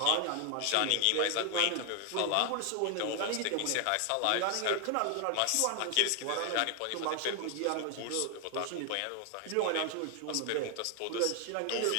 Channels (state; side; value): different; both; correlation 0.00